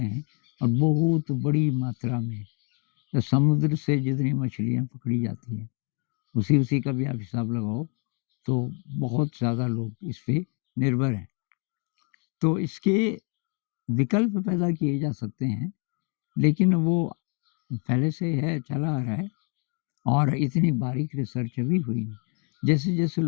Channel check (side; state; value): right; quieter; 38.6 dB